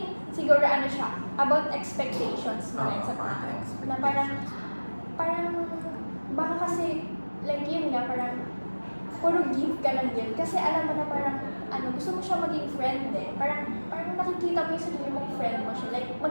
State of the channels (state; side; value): inverted; both; correlation -1.00